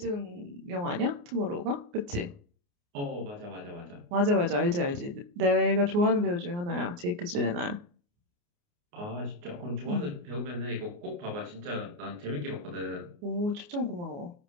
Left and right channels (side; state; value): left; late; 29 ms